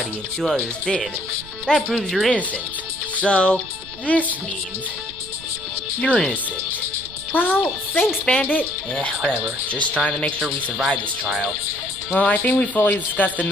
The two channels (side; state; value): right; noise; rumble, 19 dB below the sound